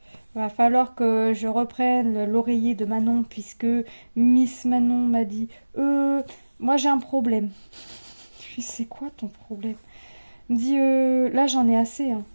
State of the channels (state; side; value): inverted; both; correlation -1.00